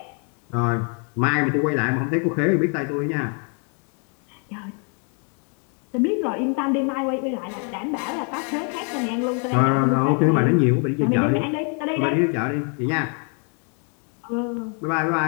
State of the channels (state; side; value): quieter; right; 39.8 dB